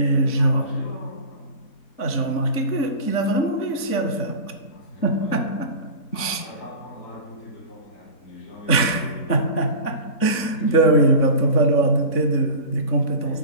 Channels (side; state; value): right; late; 3.6 ms